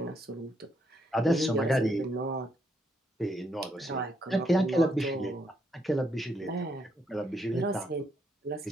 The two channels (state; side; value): normal; both; correlation 0.75